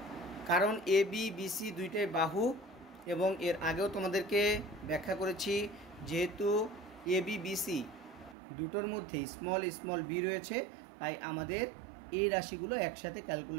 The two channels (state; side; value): drops out; left; at 8.3 s